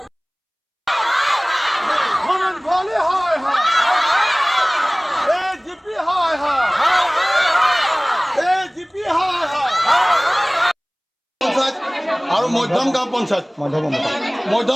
ভবেন ভৰালী হয় হয় এজিপি হয় হয় এজিপি হয় হয় পঞ্চায়ত আৰু মধ্যম গাঁও পঞ্চায়ত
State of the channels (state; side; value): identical; both; correlation 1.00